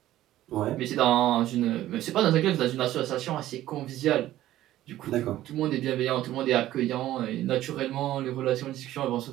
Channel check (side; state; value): left; quieter; 14.1 dB